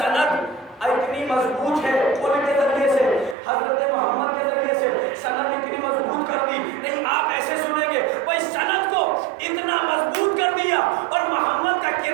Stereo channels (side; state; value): left; drops out; at 3.4 s